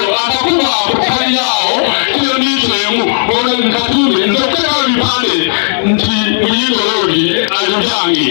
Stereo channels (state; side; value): silent; right; digital silence